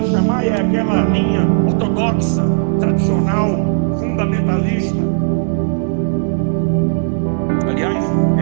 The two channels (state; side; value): silent; left; digital silence